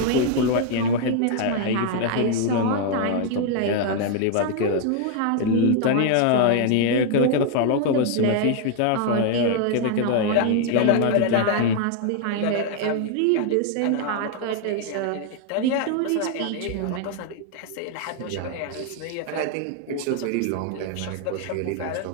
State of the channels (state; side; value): different; both; correlation 0.00